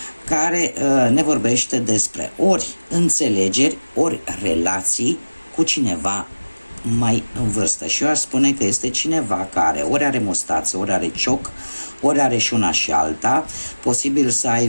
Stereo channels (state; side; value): inverted; both; correlation -1.00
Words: care ne vorbește despre ori înțelegeri, ori relații cu cineva mai în vârstă. Și eu aș spune că este cineva care ori are mustață, ori are cioc, ori are și una și alta, posibil să